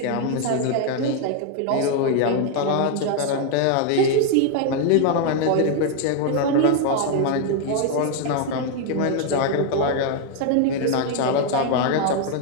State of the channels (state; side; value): different; both; correlation 0.00